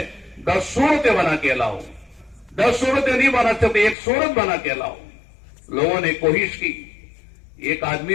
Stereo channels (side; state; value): right; drops out; at 4.0 s